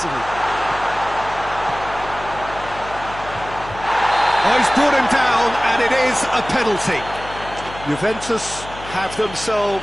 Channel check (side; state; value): left; noise; hum, 15 dB below the sound